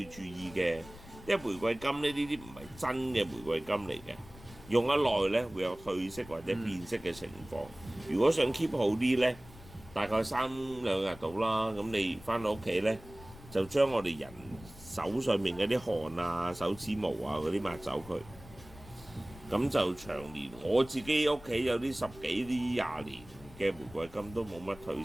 注意嘅。因為玫瑰金呢啲唔係真嘅玫瑰金嚟嘅，用得耐呢會有褪色或者變色嘅情況。如果想 keep 好啲呢，大概3-2日到啦。咁你翻到屋企呢，就將我哋人手上面嗰啲汗啊、手指毛啊嗰啲抹走佢。咁就長年，我自己屋企有啲10幾、20年嘅玫瑰金都冇乜褪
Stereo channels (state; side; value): noise; left; rumble, 19 dB below the sound